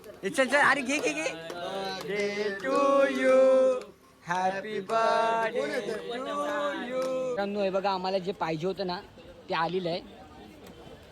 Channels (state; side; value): identical; both; correlation 1.00